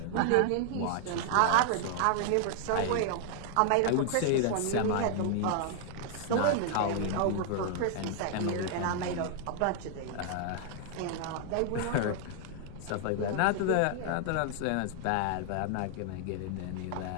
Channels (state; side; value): different; both; correlation 0.00